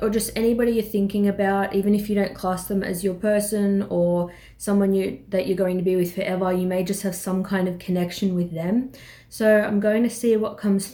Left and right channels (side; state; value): both; identical; correlation 1.00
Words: just anybody you're thinking about, even if you don't class them as your person or someone that you're going to be with forever. You may just have some kind of connection with them. So I'm going to see what comes